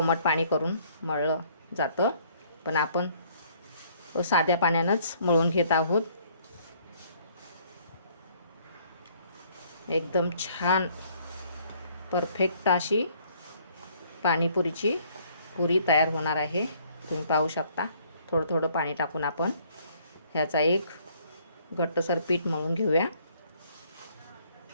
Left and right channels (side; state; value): both; inverted; correlation -0.62